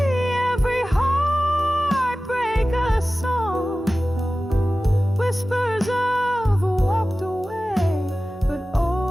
every heartbreak a song. Whispers of walked away, but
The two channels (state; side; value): normal; both; correlation 0.96